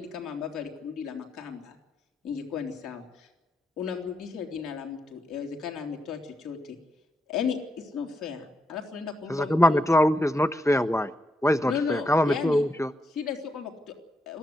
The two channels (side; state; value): both; normal; correlation 0.81